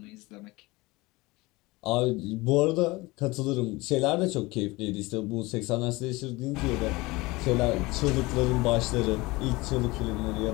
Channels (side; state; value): right; quieter; 22.2 dB